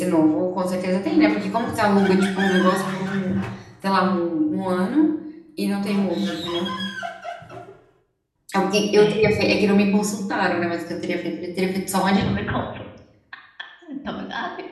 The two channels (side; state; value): both; identical; correlation 1.00